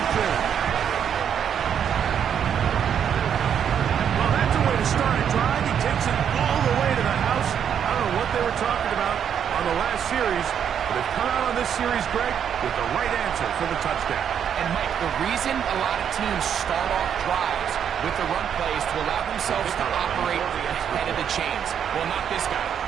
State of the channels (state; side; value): quieter; left; 8.4 dB